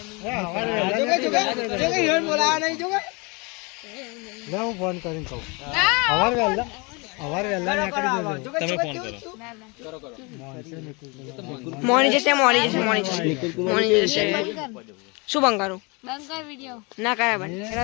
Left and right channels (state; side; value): quieter; right; 29.1 dB